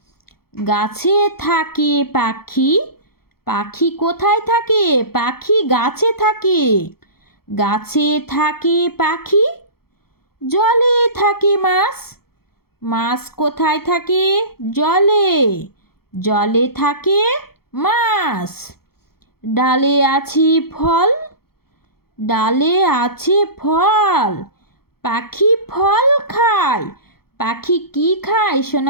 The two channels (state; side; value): late; right; 0.95 ms